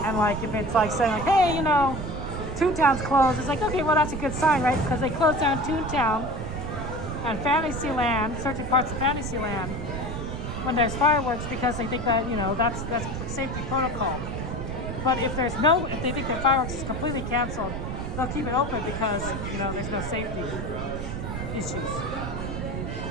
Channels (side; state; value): right; noise; rumble, 5 dB below the sound